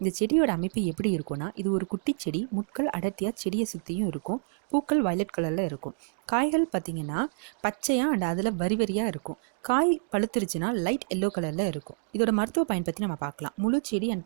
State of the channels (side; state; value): left; silent; digital silence